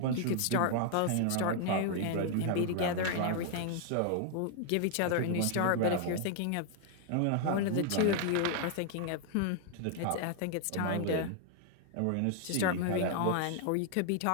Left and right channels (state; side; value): different; both; correlation 0.00